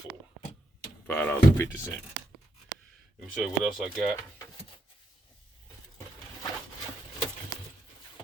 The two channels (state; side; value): normal; both; correlation 0.80